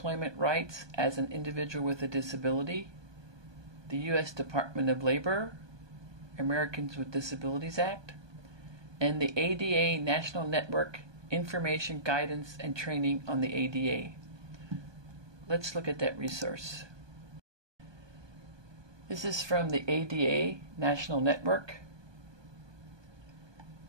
rights as an individual with a disability, the U.S. Department of Labor, Americans with Disabilities Act, and the ADA National Network Information, Guidance, and Training on the ADA. Let's look at that resource. This is from the ADA National Network.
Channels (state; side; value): late; left; 1.2 ms